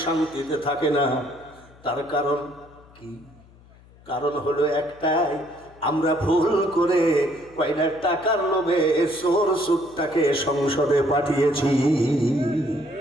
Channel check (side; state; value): left; noise; hum, 26 dB below the sound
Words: শান্তিতে থাকে না। তার কারণ কি? কারণ হলো একটাই, আমরা ভুল করে কয়টা টাকার লোভে চোর সুটটাকে সংসদে পাঠিয়েছি।